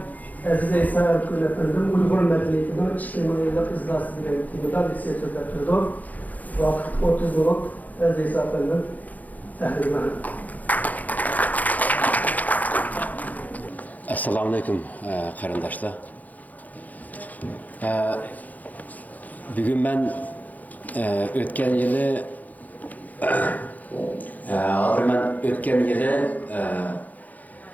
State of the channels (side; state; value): right; late; 0.079 ms